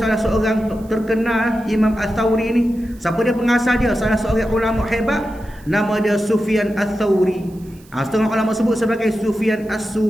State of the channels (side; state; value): right; noise; hiss, 27 dB below the sound